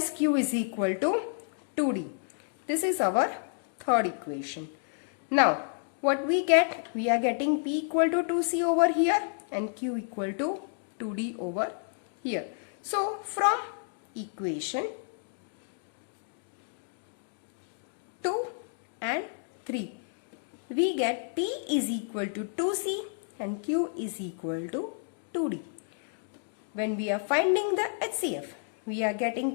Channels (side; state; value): right; silent; digital silence